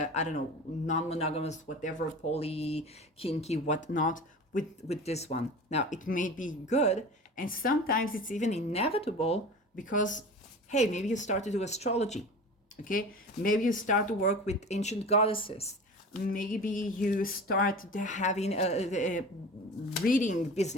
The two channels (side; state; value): both; normal; correlation 0.35